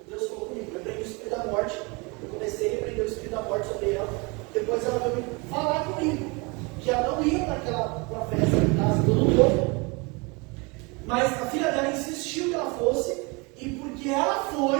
Deus falou comigo: repreende o Espírito da morte. Eu comecei a repreender o Espírito da morte sobre ela. Depois ela veio falar comigo que ela não ia para a festa em casa do novo. Mas a filha dela insistiu que ela fosse. E porque ela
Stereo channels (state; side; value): quieter; left; 28.6 dB